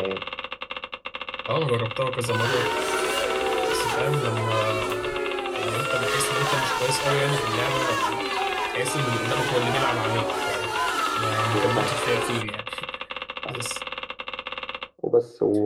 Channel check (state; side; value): identical; both; correlation 1.00